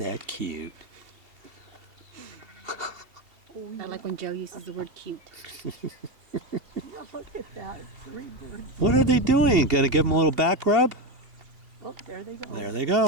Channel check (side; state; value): left; late; 2.7 ms